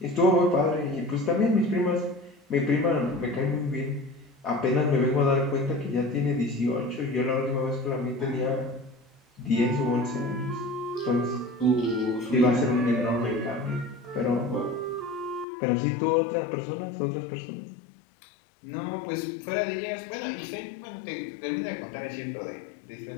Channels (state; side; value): drops out; right; at 15.5 s